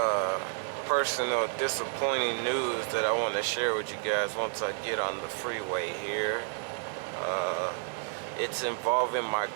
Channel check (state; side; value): silent; left; 57 dB below the other